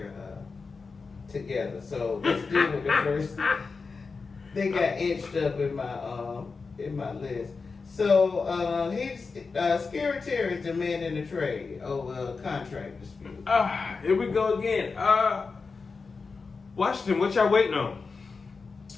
together. So let's deal with the first. They got inched up in my list. So he's Scary Terry is demanding a trade over a contract dispute. Here we go again. Washington, what y'all waiting on?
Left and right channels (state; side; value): quieter; right; 4.6 dB